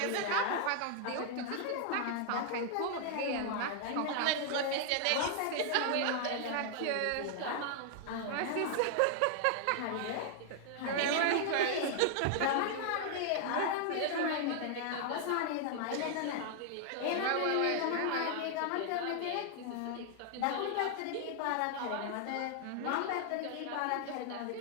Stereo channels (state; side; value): different; both; correlation 0.00